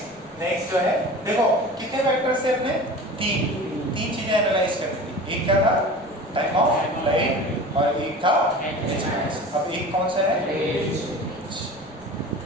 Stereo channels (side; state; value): right; noise; rumble, 26 dB below the sound